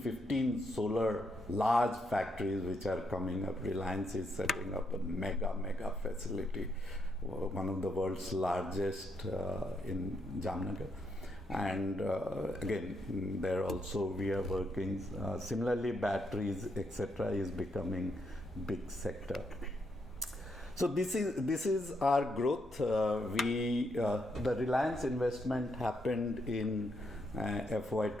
solar large factories which are coming up. Reliance is setting up a mega facility, one of the world's largest in Jamnagar. And again, there also we are working. Similarly, batteries, etc., is becoming big sector. So this is our growth. The Reliance investment happened in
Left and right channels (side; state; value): both; normal; correlation 0.78